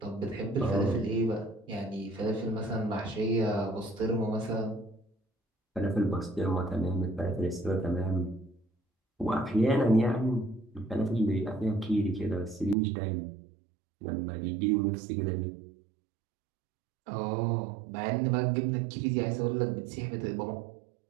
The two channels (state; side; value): drops out; left; at 12.8 s